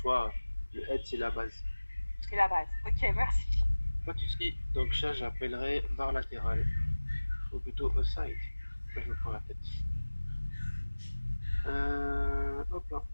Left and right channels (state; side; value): inverted; both; correlation -1.00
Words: le head c'est la base. C'est la base. Ok, merci. Pas de souci. Donc ça, j'appellerai barre latérale. Ou plutôt aside. Là, je me prends la tête. Hop là.